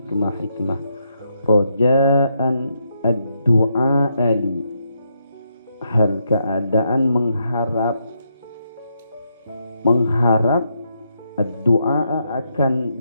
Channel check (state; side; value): inverted; both; correlation -0.79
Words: Roja'an ad-du'a ali, hal keadaan mengharap ad-du'a, akan